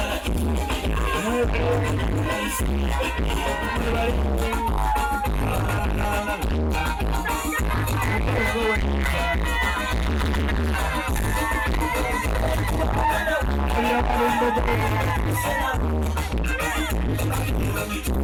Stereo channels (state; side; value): identical; both; correlation 1.00